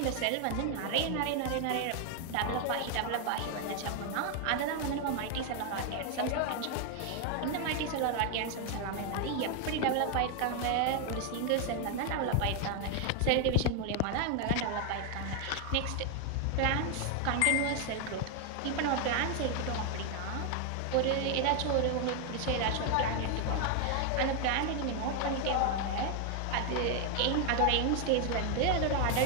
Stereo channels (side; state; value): both; different; correlation 0.01